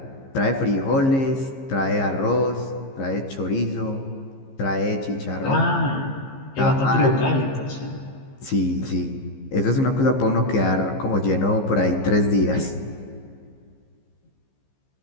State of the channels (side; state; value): right; late; 15 ms